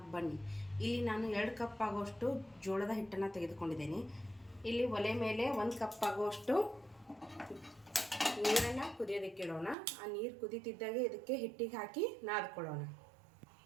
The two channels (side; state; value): left; drops out; at 9.8 s